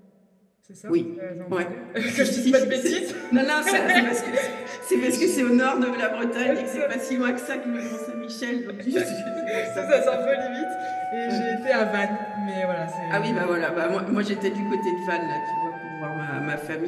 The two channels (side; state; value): both; identical; correlation 1.00